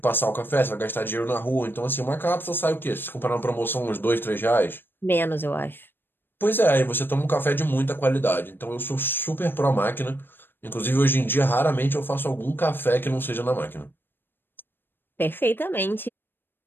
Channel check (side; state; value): right; late; 0.098 ms